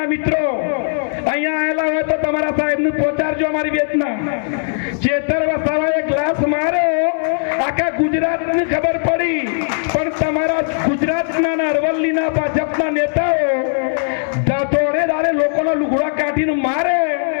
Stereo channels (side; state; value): right; silent; 67 dB below the other